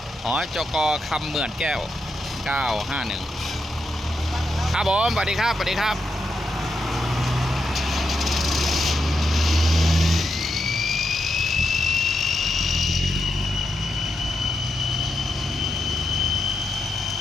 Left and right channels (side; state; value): both; normal; correlation 0.84